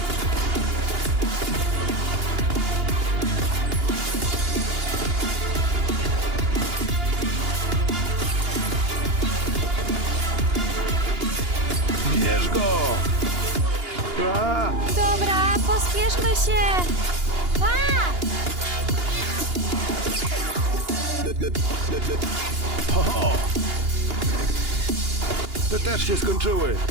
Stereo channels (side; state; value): left; late; 2.8 ms